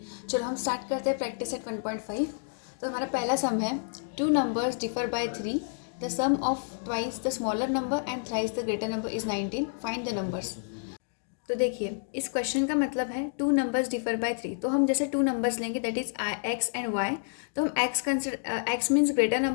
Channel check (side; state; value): right; silent; digital silence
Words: चलो हम स्टार्ट करते हैं प्रैक्टिस सेट 1.5। तो हमारा पहला सम है, two numbers differ by 3, the sum of twice the smaller number and thrice the greater number is 19, find the numbers. तो देखिए, इस क्वेश्चन का मतलब है टू नंबर्स डिफर बाय 3। तो हम जैसे टू नंबर्स लेंगे, that is X and Y. तो हम X means greater